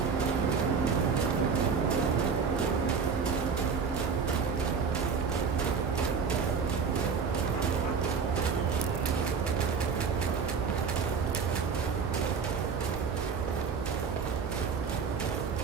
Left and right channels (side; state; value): left; quieter; 5.8 dB